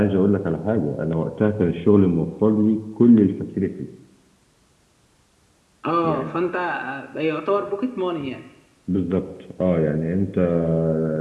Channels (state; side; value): identical; both; correlation 1.00